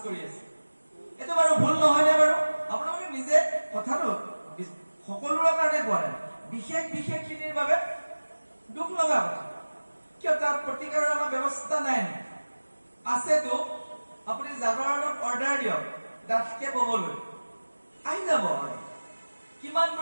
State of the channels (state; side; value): inverted; both; correlation -1.00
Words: কৰি আছে। এইটো বাৰু ভুল নহয় নে বাৰু? আপোনালোকে নিজে কথাটো সকলোৰে কাৰণে কোৱা নাই, বিশেষ খিনিৰ বাবে দুখ লগা কথা। কিয় তাৰ প্ৰতিকাৰৰ আমাৰ ব্যৱস্থা নাই? আছেতো। আপুনি জাগৰণত অৰ্ডাৰ দিয়ক ডাঠকে ববলৈ, আহি যাব।